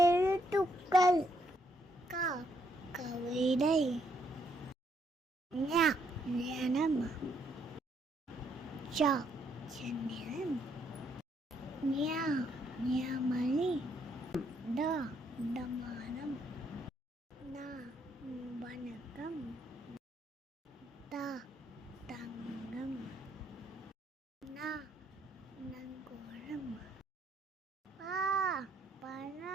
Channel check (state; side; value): normal; both; correlation 0.72